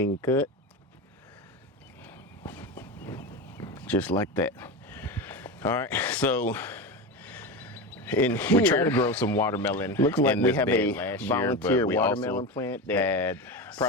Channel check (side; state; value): both; normal; correlation 0.21